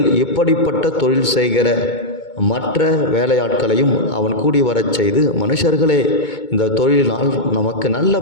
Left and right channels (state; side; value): late; right; 2.2 ms